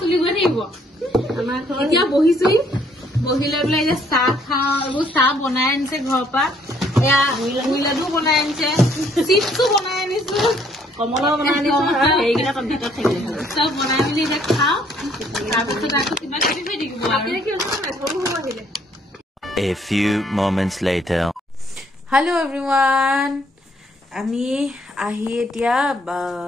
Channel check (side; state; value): both; normal; correlation 0.66